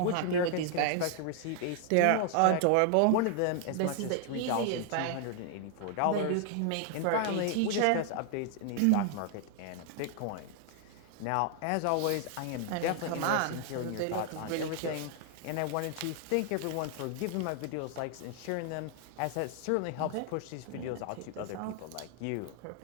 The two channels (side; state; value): both; different; correlation 0.00